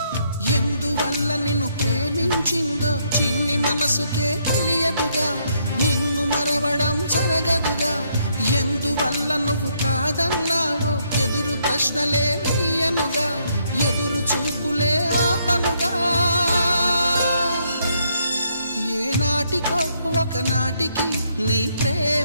ఎందువల్ల నిన్ను ప్రేమించిందో చిన్ని మనసుకే తెలియదుగా, నిన్ను మరవడం జరగదుగా. ఎందువల్ల నువ్వు కాదన్నావో ఎదురు ప్రశ్నలే వేయనుగా, ఎదురు చూపులే ఆపనుగా. ఏనాటికో ఒకనాటికి నీ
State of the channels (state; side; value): inverted; both; correlation -0.73